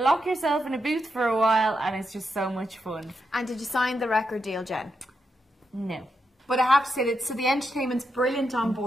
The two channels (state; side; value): normal; both; correlation 0.84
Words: yourself in a booth for a while, and it's just so much fun. And did you sign the record deal, Jen? No. But I have to say that, so the entertainment's brilliant on